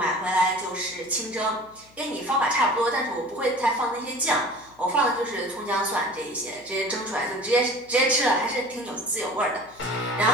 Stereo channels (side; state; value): left; noise; hum, 27 dB below the sound